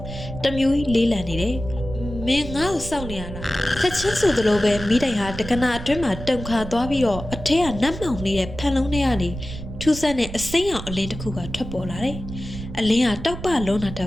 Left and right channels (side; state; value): right; noise; rumble, 10 dB below the sound